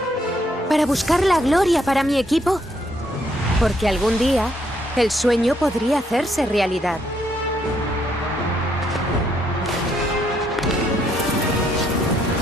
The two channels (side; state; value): both; normal; correlation 0.72